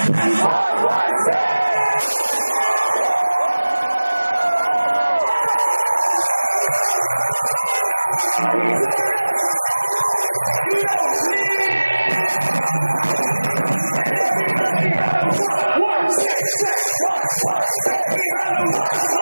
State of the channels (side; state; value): both; inverted; correlation -1.00